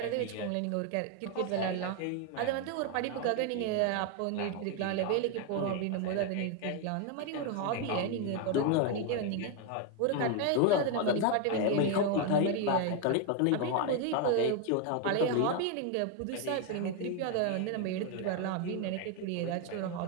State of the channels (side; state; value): both; different; correlation 0.01